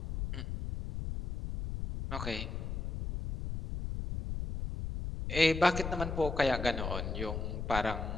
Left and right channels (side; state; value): left; noise; rumble, 4 dB below the sound